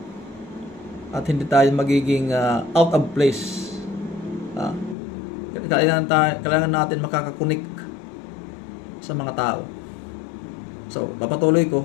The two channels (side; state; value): right; drops out; at 5.0 s